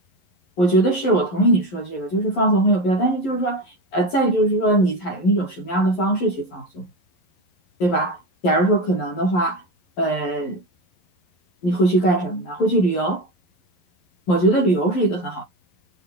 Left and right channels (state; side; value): late; right; 11 ms